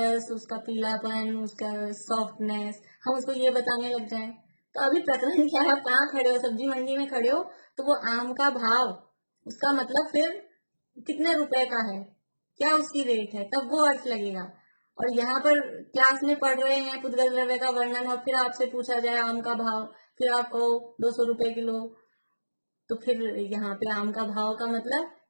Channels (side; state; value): both; inverted; correlation -1.00